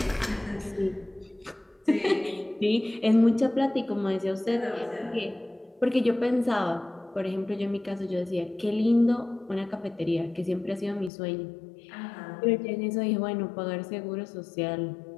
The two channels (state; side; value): drops out; right; at 11.1 s